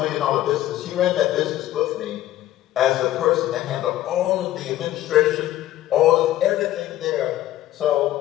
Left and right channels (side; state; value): right; quieter; 14.0 dB